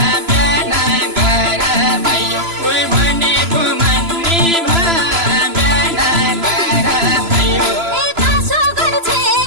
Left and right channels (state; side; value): late; left; 3.0 ms